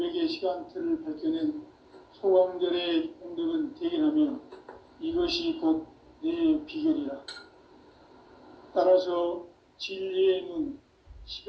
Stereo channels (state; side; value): identical; both; correlation 1.00